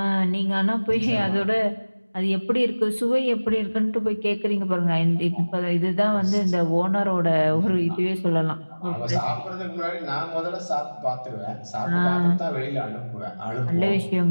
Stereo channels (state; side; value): inverted; both; correlation -1.00